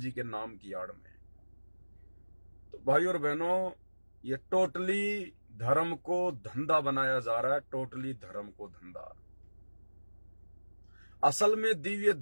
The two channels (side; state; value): both; inverted; correlation -1.00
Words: के नाम की आड़ में। तो भाई और बहनों, ये टोटली धर्म को धंधा बनाया जा रहा है, टोटली धर्म को धंधा। असल में दिव्य